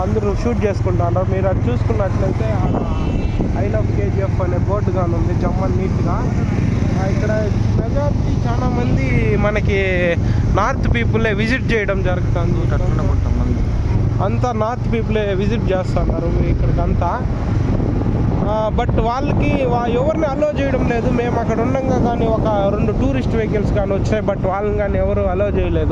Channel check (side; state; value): both; identical; correlation 1.00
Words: అందరూ షూట్ చేసుకుంటున్నారు. మీరు అది చూసుకున్నట్లయితే ఐ లవ్ KGF అనే బోర్డు కానీ ఉంది జమ్మన్ నీట్గా. ఇక్కడ మెజారిటీ చాలా మంది మనకి నార్త్ పీపులే విజిట్ చేయడం జరుగుతుంది. అంతా నార్త్ పీపులే విజిట్ చేస్తున్నారు ఇక్కడికంతా. బట్ వాళ్ళకి ఎవరిని అలో చేయడం లేదు. మేము అక్కడ ఉండగా కానీ ఒక 2 టూరిస్ట్ వెహికల్స్ కానీ వచ్చాయి, బట్ వాళ్ళని కానీ ఎవరు అలో